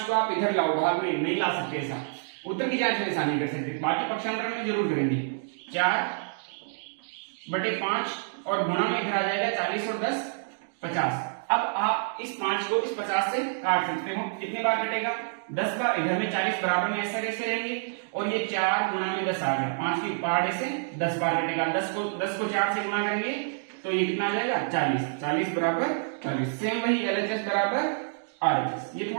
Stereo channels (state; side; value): silent; left; digital silence